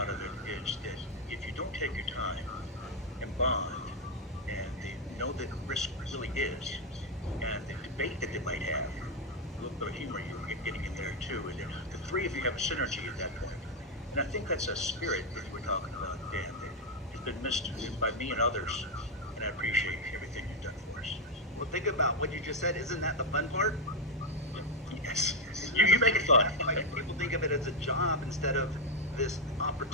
of it is that if you don't take your time and bond, and they know that risk really is, and the debate that they might have, a little bit of humor you're getting in there too, and the three of you have a synergy at that point. And I think that's a spirit that we're talking about, Dan, that has been missed by me and others, and I appreciate everything you've done for us. Well, think about what you just said. Isn't that the fun part? Yes. You make it fun. Like, people of it as a job instead of this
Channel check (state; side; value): normal; both; correlation 0.03